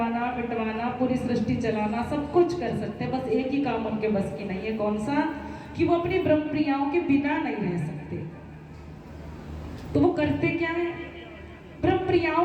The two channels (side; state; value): both; identical; correlation 1.00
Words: मिटवाना, पूरी सृष्टि चलाना, सब कुछ कर सकते हैं, बस एक ही काम उनके बस की नहीं है। कौन सा? कि वो अपनी ब्रह्म प्रियाओं के बिना नहीं रह सकते। तो वो करते क्या है, ब्रह्म प्रियाओं